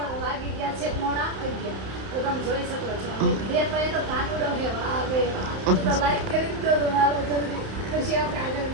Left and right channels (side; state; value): left; late; 31 ms